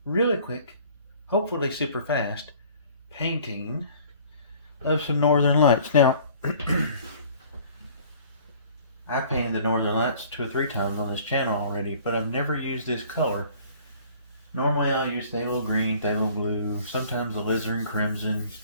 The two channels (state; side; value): inverted; both; correlation -0.52